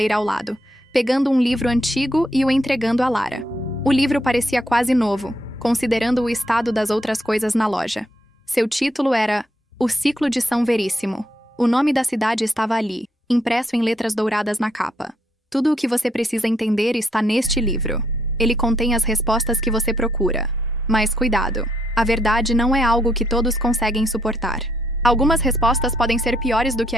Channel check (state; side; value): normal; both; correlation 0.74